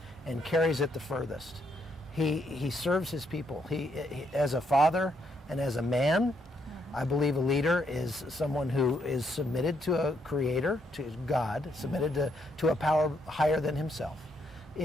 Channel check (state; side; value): normal; both; correlation 0.75